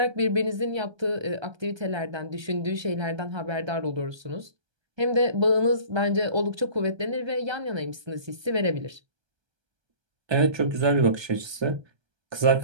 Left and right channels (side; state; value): left; late; 1.3 ms